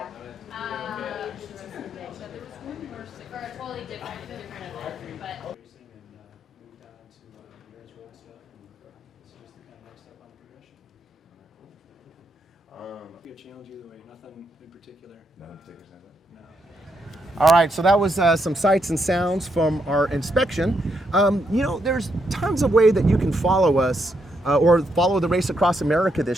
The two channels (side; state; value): both; normal; correlation 0.79